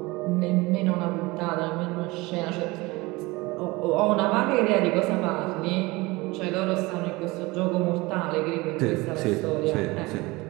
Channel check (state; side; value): quieter; left; 22.6 dB